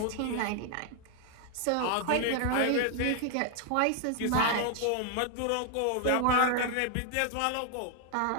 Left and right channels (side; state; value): both; different; correlation 0.00